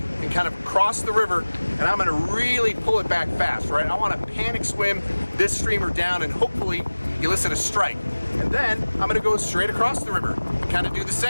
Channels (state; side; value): inverted; both; correlation -1.00